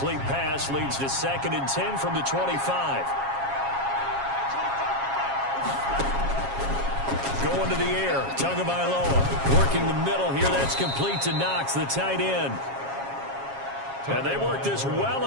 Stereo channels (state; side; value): late; left; 7.3 ms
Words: pass leads to 2nd and 10 from the 25. Going to the air, Tagovailoa working the middle here. That's complete to Knox, the tight end. And they work this well